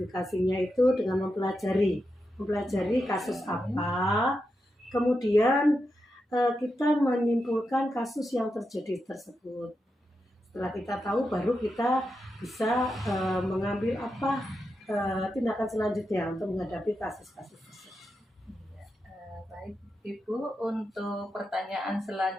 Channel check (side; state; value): both; normal; correlation 0.87